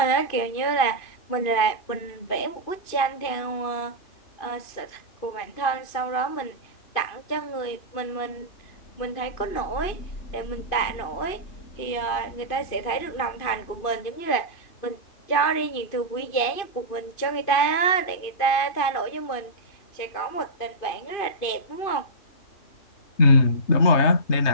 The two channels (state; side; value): late; right; 2.5 ms